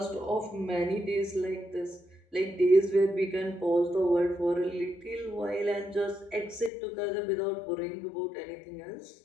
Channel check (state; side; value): drops out; right; at 6.7 s